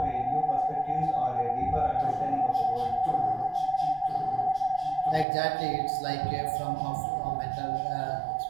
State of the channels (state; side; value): drops out; left; at 5.2 s